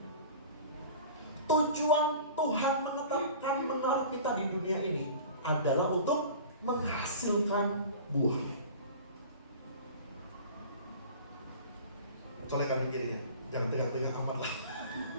Tujuan Tuhan menetapkan menaruh kita di dunia ini adalah untuk menghasilkan buah. Colek kanan kirinya, jangan tengah-tengah amat lah.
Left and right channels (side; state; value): both; inverted; correlation -0.41